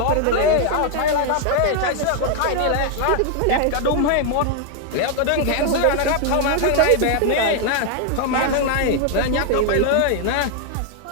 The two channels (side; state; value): both; different; correlation 0.00